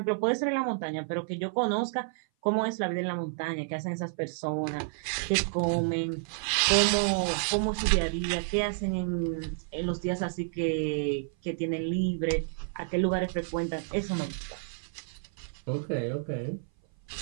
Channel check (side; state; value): left; silent; 56 dB below the other